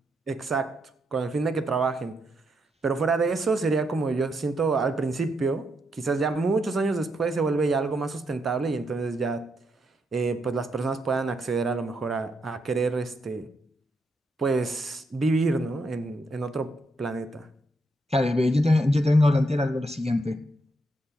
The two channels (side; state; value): both; normal; correlation 0.79